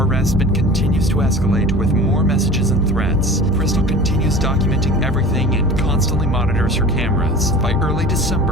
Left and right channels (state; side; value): normal; both; correlation 0.39